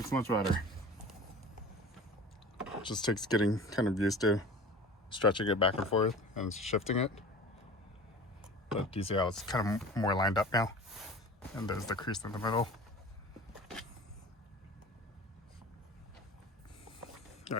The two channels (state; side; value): normal; both; correlation 0.39